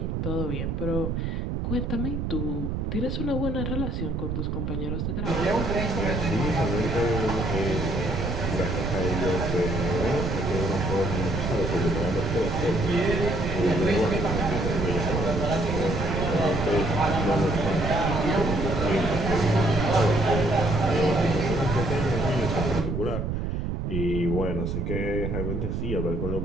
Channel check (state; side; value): noise; right; rumble, 1 dB below the sound